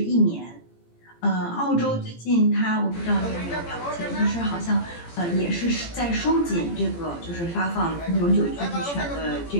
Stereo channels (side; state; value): right; late; 17 ms